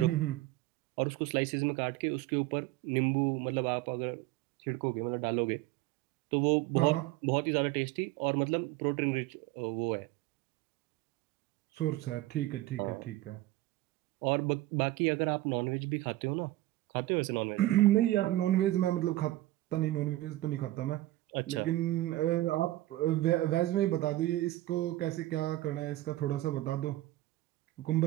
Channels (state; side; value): quieter; left; 16.7 dB